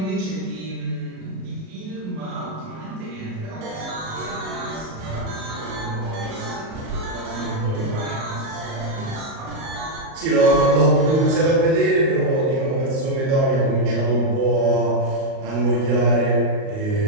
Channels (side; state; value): left; late; 38 ms